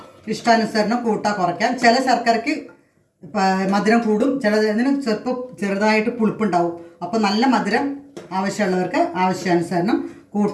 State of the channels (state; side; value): identical; both; correlation 1.00